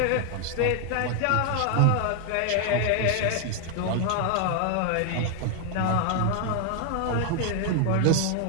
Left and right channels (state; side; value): different; both; correlation 0.00